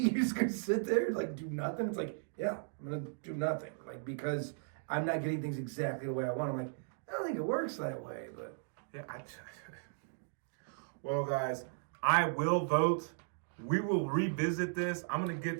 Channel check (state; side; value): silent; left; digital silence